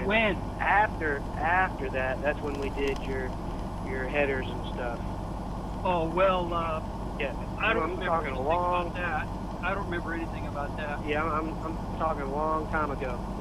When? After that, that's when we did your headers and stuff. Oh, well, Yeah, I don't I'm remember talking anything a long. about that. I don't remember anything about that. Yeah, I'm talking a long time ago.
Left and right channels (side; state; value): both; identical; correlation 1.00